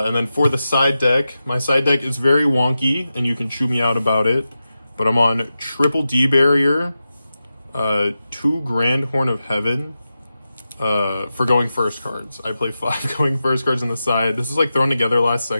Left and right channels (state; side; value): inverted; both; correlation -0.91